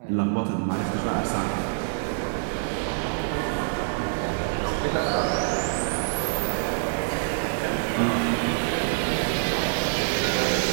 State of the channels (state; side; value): silent; left; digital silence